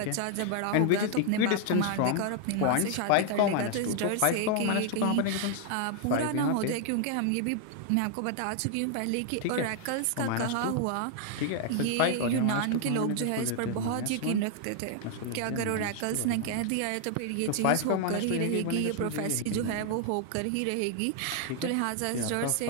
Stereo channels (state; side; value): different; both; correlation 0.00